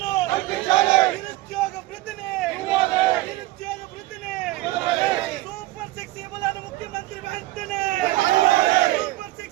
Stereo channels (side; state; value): left; quieter; 18.2 dB